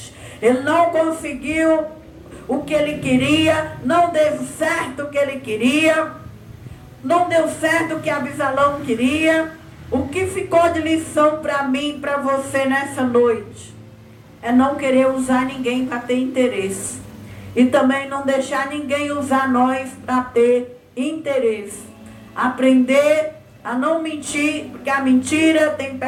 Ele não conseguiu o que ele queria, não deu certo o que ele queria, não deu certo o que Absalão queria. O que ficou de lição para mim e para você nessa noite é não querer usar ninguém para ter interesse, e também não deixar ninguém usar nós para ter interesse. Aprender a não mentir, porque a mentira tem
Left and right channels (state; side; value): identical; both; correlation 1.00